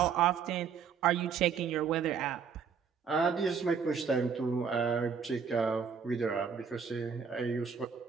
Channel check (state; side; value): quieter; left; 6.4 dB